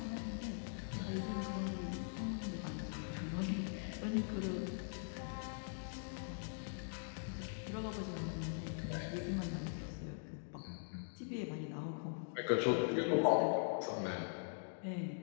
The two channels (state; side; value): silent; right; digital silence